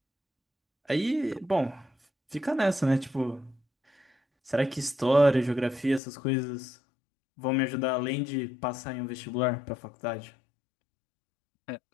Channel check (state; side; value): drops out; right; at 6.0 s